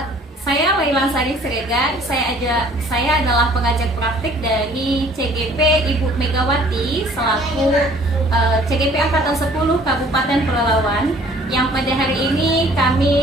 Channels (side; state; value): both; normal; correlation 0.55